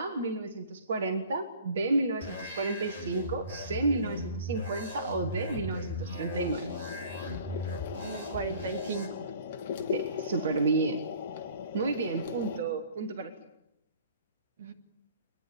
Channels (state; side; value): inverted; both; correlation -0.49